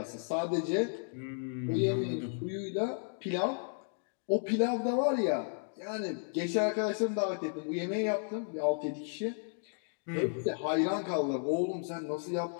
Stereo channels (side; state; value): right; silent; digital silence